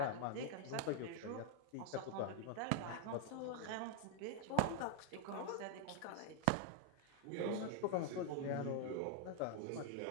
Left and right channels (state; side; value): different; both; correlation 0.00